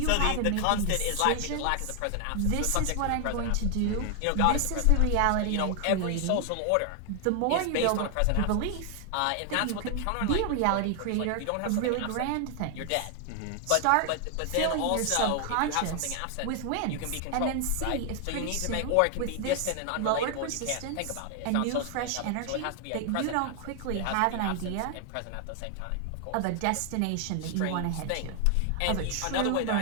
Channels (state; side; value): different; both; correlation 0.00